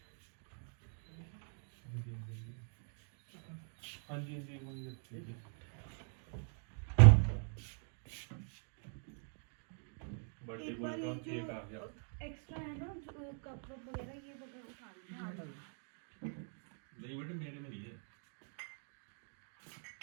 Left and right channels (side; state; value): left; silent; 50 dB below the other